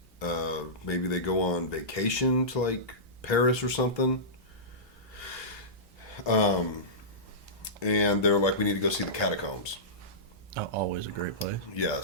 Maybe they go on vacation to like Paris or something. And they're like, we need to go see the catacombs. Oh, always a great place.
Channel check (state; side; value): normal; both; correlation -0.18